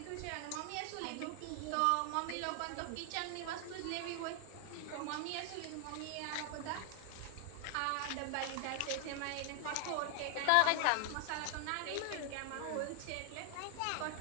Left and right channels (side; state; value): both; different; correlation 0.00